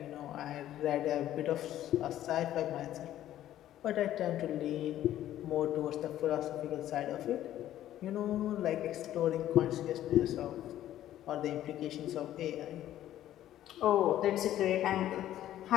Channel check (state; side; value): quieter; right; 12.6 dB